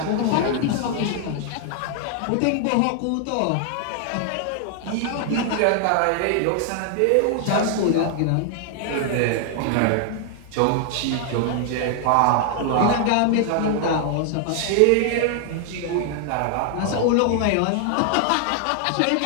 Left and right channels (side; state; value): both; different; correlation 0.00